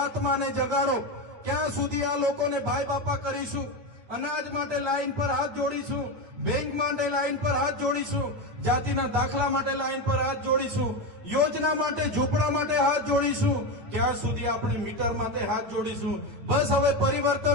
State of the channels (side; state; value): left; late; 9.1 ms